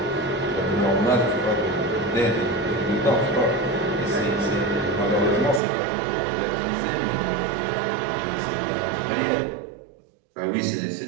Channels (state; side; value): drops out; left; at 5.6 s